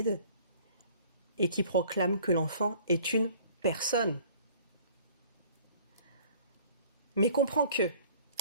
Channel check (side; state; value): both; inverted; correlation -0.52